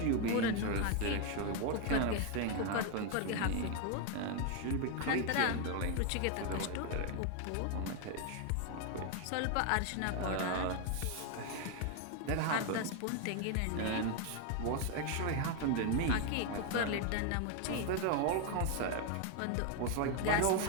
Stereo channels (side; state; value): both; different; correlation 0.01